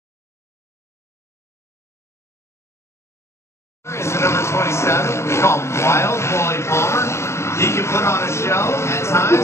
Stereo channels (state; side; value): late; right; 0.13 ms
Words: Is the number 27. We call him Wild Wally Palmer. He can put on a show at